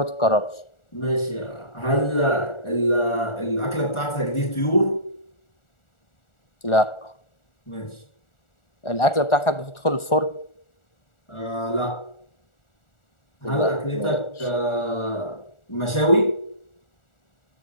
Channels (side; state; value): right; late; 1.4 ms